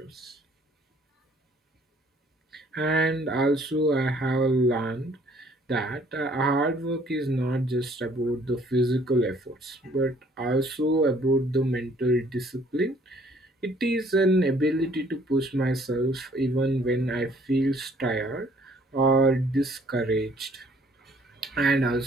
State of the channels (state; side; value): normal; both; correlation 0.60